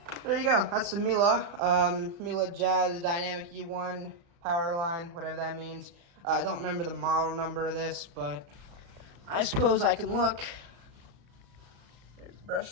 there you go. That's the Miele Jazz Dynamic U1 power line, whatever that means. I don't remember the model number of this, but I suppose I can look. There's the brush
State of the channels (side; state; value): left; late; 35 ms